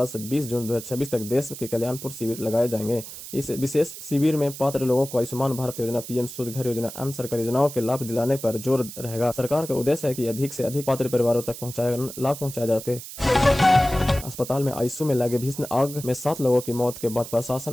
से 20 जून 2026 तक देश के कल्याणपुर शिविर लगाए जाएंगे। इस विशेष शिविर में पात्र लोगों को आयुष्मान भारत योजना, पीएम सूर्य घर योजना, अन्य सरकारी योजनाओं के लाभ दिलाने पर जोर रहेगा। सरकार का उद्देश्य है कि अधिक से अधिक पात्र परिवारों तक लाभ पहुंचाया जाए। अस्पताल में आईसीयू में लगे भीषण आग में 7 लोगों की मौत के बाद प्रशासन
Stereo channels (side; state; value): right; noise; hiss, 12 dB below the sound